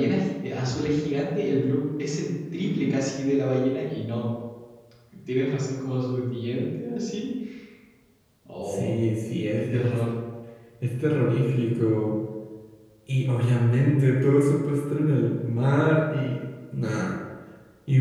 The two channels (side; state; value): both; identical; correlation 1.00